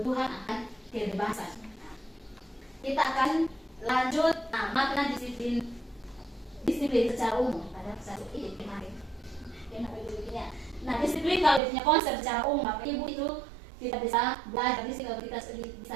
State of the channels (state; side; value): drops out; left; at 11.6 s